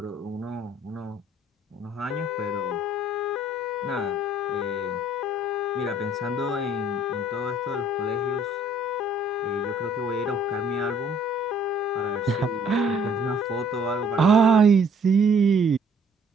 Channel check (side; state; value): both; normal; correlation 0.60